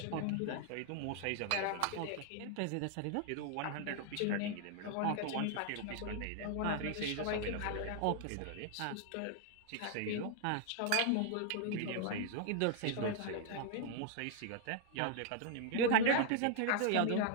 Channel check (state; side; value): different; both; correlation 0.00